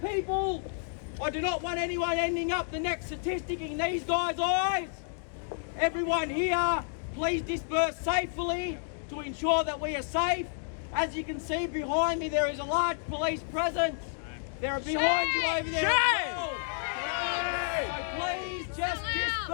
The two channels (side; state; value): right; silent; digital silence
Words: I do not want anyone ending up the next statistic in these guys' eyes. Everyone here, please disperse safely to ensure that we are safe. As you can see behind me, there is a large police presence. They're behind you over there as well. So please just